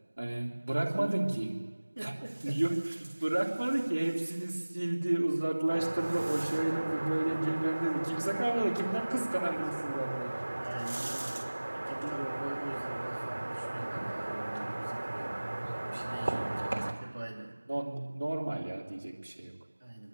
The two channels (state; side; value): inverted; both; correlation -1.00